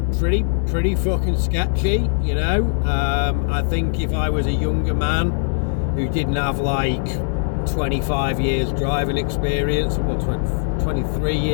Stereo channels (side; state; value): right; silent; digital silence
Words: pretty fucking sketchy, you know. I think if I was a younger man who didn't have like 25 years driving experience, or 23